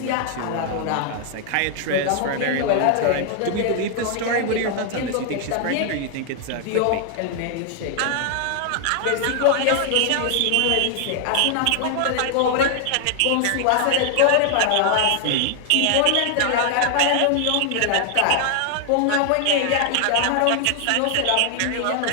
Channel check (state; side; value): different; both; correlation 0.00